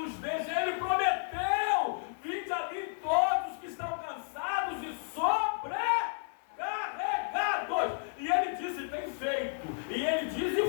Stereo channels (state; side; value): silent; right; 56 dB below the other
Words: deixa. Ele prometeu: vinde a mim todos que estão cansados e sobrecarregados. E Ele disse: tem feito. E Ele diz